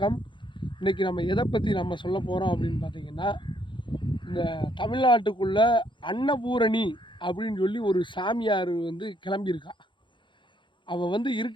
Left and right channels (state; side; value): late; right; 0.23 ms